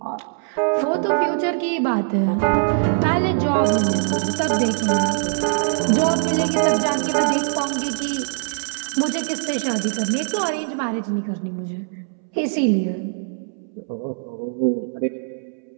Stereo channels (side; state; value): left; silent; 64 dB below the other